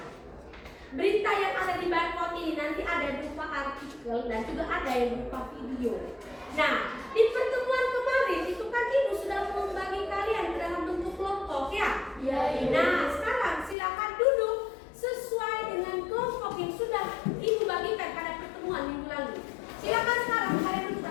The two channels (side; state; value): right; drops out; at 13.8 s